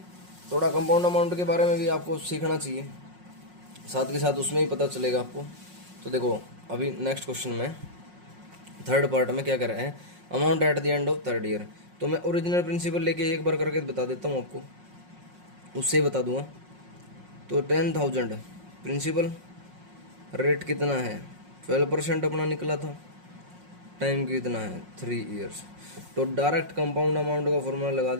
थोड़ा कंपाउंड अमाउंट के बारे में भी आपको सीखना चाहिए, साथ के साथ उसमें ही पता चलेगा आपको। तो देखो अभी नेक्स्ट क्वेश्चन में थर्ड पार्ट में क्या कर रहे हैं, amount at the end of third year. तो मैं ओरिजिनल प्रिंसिपल लेके एक बार करके बता देता हूँ आपको, उससे ही बता दूंगा। तो 10,000 प्रिंसिपल, रेट कितना है 12% अपना निकला था, टाइम कितना है 3 ईयर्स। तो डायरेक्ट कंपाउंड अमाउंट का फॉर्मूला लगा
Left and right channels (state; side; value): late; left; 5.5 ms